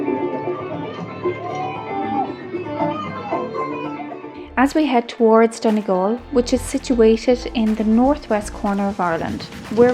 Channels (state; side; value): identical; both; correlation 1.00